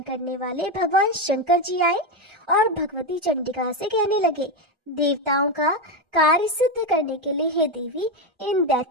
करने वाले भगवान शंकर जी आए और भगवती चंडिका से कहने लगे, देवताओं का कार्य सिद्ध करने के लिए हे देवी, इन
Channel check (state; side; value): late; left; 1.3 ms